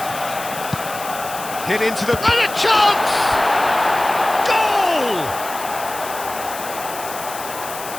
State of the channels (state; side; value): noise; left; hiss, 11 dB below the sound